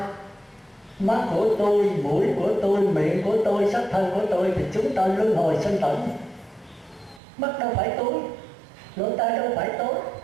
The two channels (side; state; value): left; drops out; at 7.2 s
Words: Mắt của tôi, mũi của tôi, miệng của tôi, sắc thân của tôi thì chúng ta luân hồi sinh tử. Mắt đâu phải tối, lỗ tai đâu phải tối,